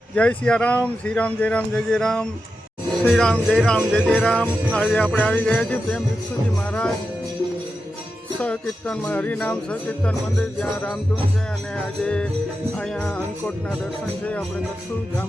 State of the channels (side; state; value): both; normal; correlation 0.90